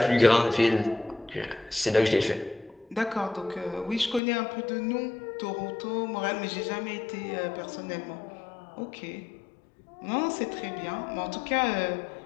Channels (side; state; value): right; drops out; at 4.2 s